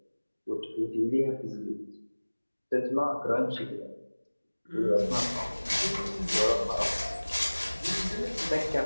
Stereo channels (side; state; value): both; inverted; correlation -1.00